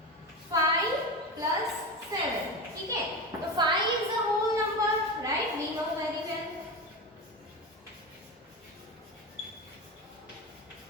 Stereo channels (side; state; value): both; normal; correlation 0.22